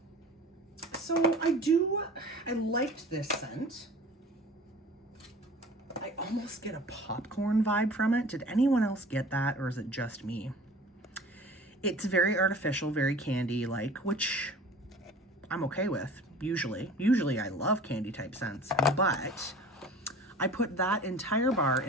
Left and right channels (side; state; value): both; normal; correlation 0.43